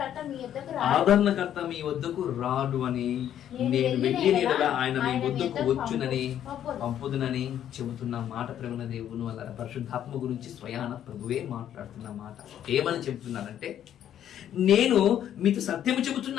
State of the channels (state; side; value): quieter; right; 10.5 dB